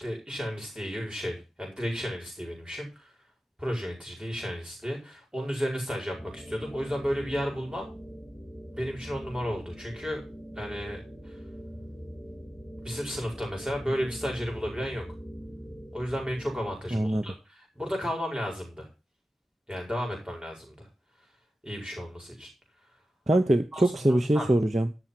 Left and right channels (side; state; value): both; normal; correlation 0.93